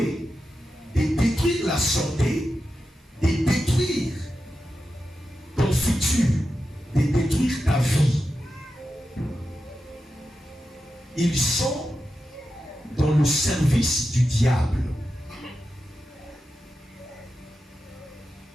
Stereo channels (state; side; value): normal; both; correlation 0.90